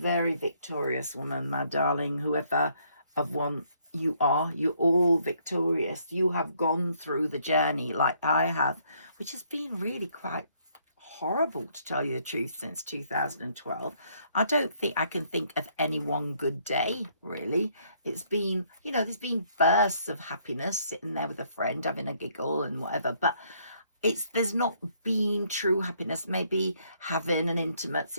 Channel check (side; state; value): both; inverted; correlation -0.68